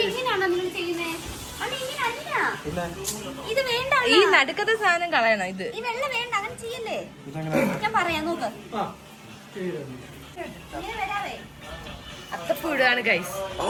ഈ നടുക്കത്തെ സാധനം കളയണം. ഇത് ഞാൻ പറയാം, നോക്ക്. അത്തപ്പൂ ഇടുകയാണ് ഗൈസ്.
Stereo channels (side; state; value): both; identical; correlation 1.00